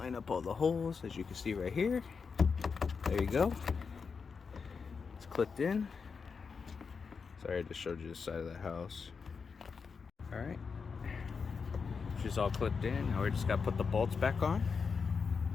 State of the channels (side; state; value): right; quieter; 5.4 dB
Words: up all the holes, as you can see right here. There you go. It's clipped in. Sorry, I just showed you the side of the house. Alright. She's all clipped in. Now we just gotta put the bolts back on.